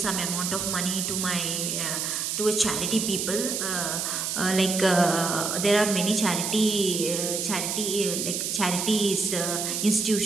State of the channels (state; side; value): noise; right; hiss, 1 dB below the sound